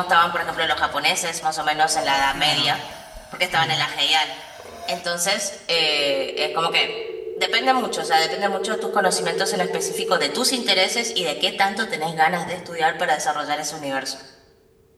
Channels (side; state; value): both; identical; correlation 1.00